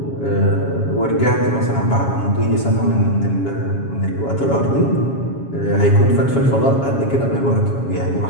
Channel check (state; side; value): late; right; 7.3 ms